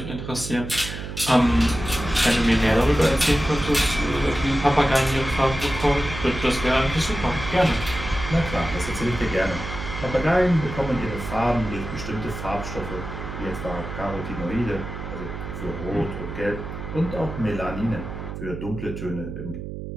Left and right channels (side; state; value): right; noise; hum, 8 dB below the sound